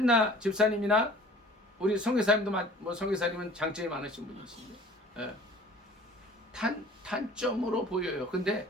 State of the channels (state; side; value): normal; both; correlation 0.48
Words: 집사님이나 우리 성교사님도, 뭐 성교사님은 장점이 많으신 분이신데, 단점으로 보여요. 근데